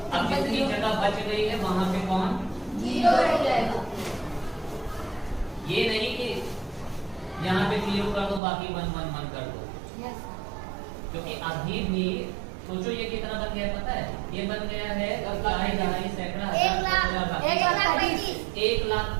अब जितनी जगह बच गई है वहां पे कौन? 0 रह जाएगा। ये नहीं कि यहाँ पे 0 कर दो बाकी 1 1 1 कर दो, यस क्योंकि अभी भी सोचो ये कितना बन गया पता है? ये बन गया है दहाई सैकड़ा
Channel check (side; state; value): left; drops out; at 8.4 s